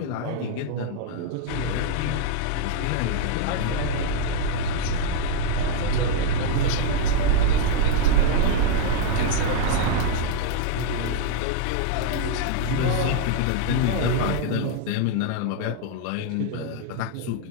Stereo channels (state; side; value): different; both; correlation 0.00